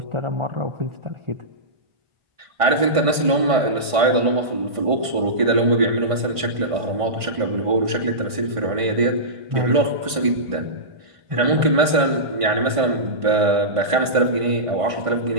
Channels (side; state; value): left; late; 1.5 ms